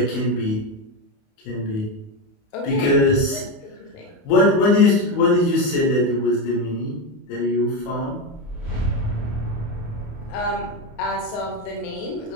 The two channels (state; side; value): late; right; 28 ms